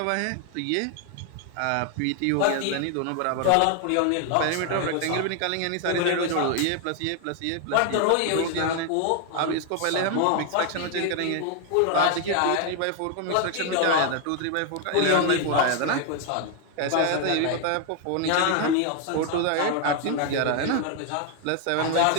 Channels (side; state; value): both; different; correlation 0.00